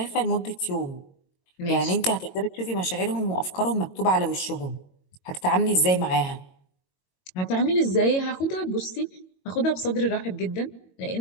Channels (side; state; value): right; late; 22 ms